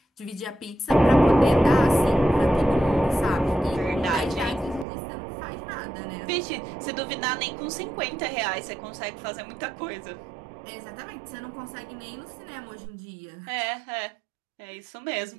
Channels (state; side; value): drops out; left; at 4.9 s